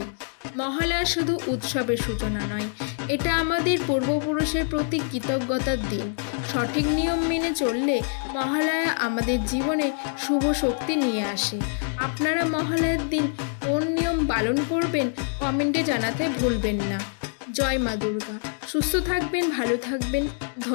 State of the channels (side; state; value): right; silent; 60 dB below the other